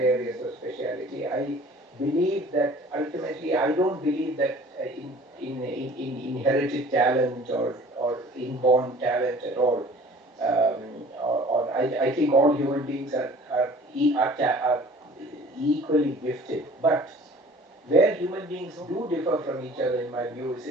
areas of speciality. I believe that ultimately, I don't believe that in inherited talent or inborn talent at all. I think all human beings are equally gifted. But where human beings do differ from each other, in my view, is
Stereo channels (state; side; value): normal; both; correlation 0.48